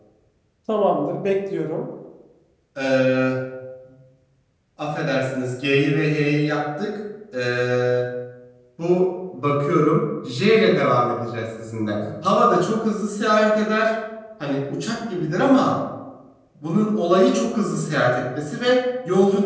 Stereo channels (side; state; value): both; identical; correlation 1.00